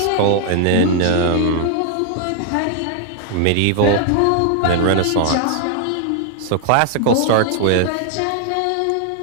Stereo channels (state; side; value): different; both; correlation 0.00